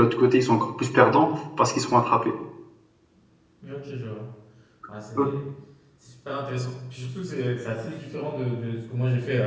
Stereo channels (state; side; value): identical; both; correlation 1.00